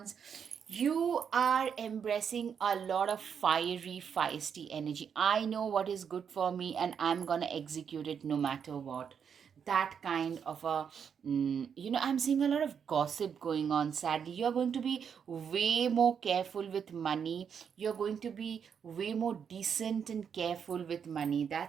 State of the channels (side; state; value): left; quieter; 7.3 dB